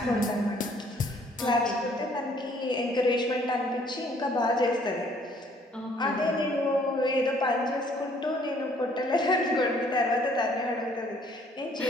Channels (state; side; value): normal; both; correlation 0.61